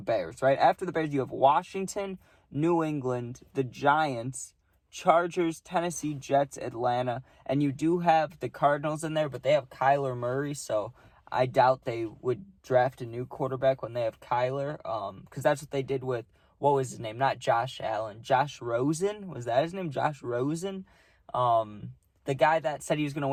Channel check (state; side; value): identical; both; correlation 1.00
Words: right? After the Bears, you have Washington, New England, the Giants, Chargers, Tennessee, Jets, Atlanta, and you do have the Cardinals in there, but they have Kyler Murray, so I doubt they would draft a new quarterback when they have Kyler, because that's what they did with, what was his name? Not Josh Allen. Josh Rosen? Was that his name? Josh Rosen? The guy that said he was going to